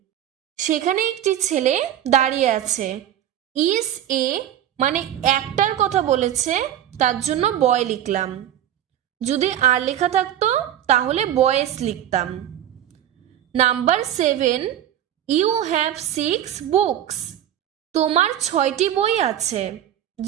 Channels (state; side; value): quieter; left; 11.2 dB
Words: সেখানে একটি ছেলে দাঁড়িয়ে আছে। ইজ এ মানে একটার কথা বলেছে, তার জন্য বয় লিখলাম। যদি আর লেখা থাকতো তাহলে বয়েস লিখতাম। নাম্বার 7, ইউ হ্যাভ 6 বুকস, তোমার 6টি বই আছে।